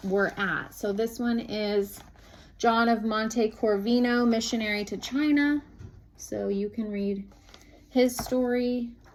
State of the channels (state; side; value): identical; both; correlation 1.00